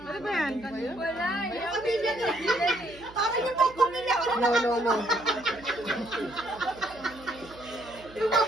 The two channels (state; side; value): noise; right; hum, 20 dB below the sound